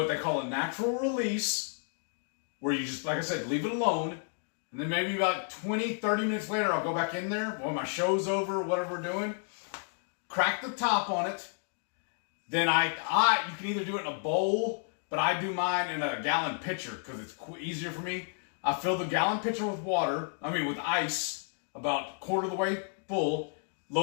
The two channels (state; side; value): silent; right; 57 dB below the other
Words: they call a natural release, where you just, like I said, leave it alone. And then maybe about 20, 30 minutes later, I'll go back in there when my show's over, whatever we're doing, crack the top on it. Then you can either do it in a bowl, but I do mine in a gallon pitcher because it's easier for me. I fill the gallon pitcher with with ice, about quarter of the way full,